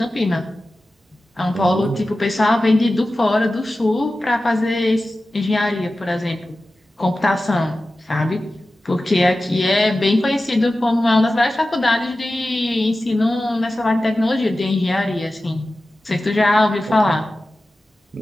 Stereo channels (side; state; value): both; normal; correlation 0.95